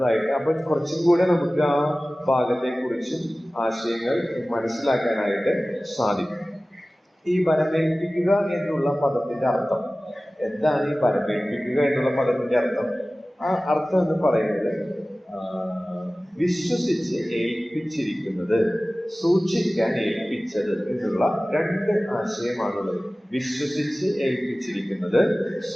അപ്പൊ കുറച്ചും കൂടെ നമുക്ക് ആ ഭാഗത്തെ കുറിച്ചും ആശയങ്ങൾ മനസ്സിലാക്കാനായിട്ട് സാധിക്കും. ഈ വരമേൽപ്പിക്കുക എന്നുള്ള പദത്തിന്റെ അർത്ഥം എന്താണ്? ഈ വരമേൽപ്പിക്കുക എന്നുള്ള പദത്തിന്റെ അർത്ഥം, ആ അർത്ഥം എന്ന് പറയുന്നത് വിശ്വസിച്ച് ഏൽപ്പിച്ചിരിക്കുന്നത്, സൂക്ഷിക്കാൻ ഏൽപ്പിച്ചത് എന്നുള്ള രണ്ട് ആശയമാണുള്ളത്. വിശ്വസിച്ച് ഏൽപ്പിച്ചിരിക്കുന്നത്,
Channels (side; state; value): both; normal; correlation 0.97